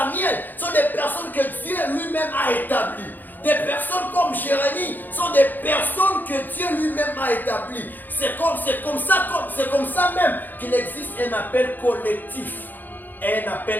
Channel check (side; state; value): right; late; 0.087 ms